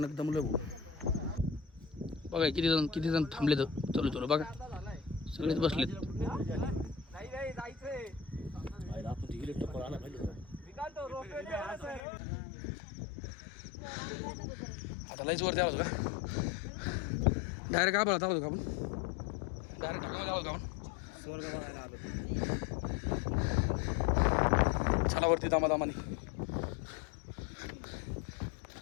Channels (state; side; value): drops out; right; at 12.0 s